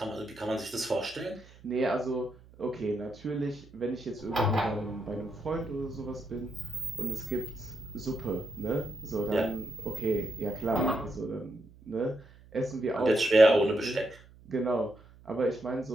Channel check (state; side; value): noise; right; hum, 23 dB below the sound